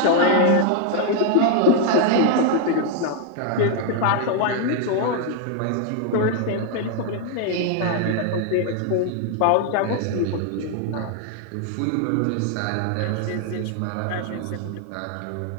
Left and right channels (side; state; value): both; different; correlation 0.00